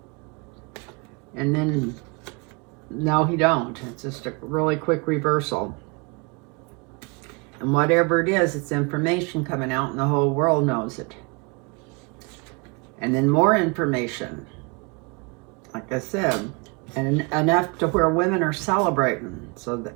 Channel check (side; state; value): left; quieter; 30.1 dB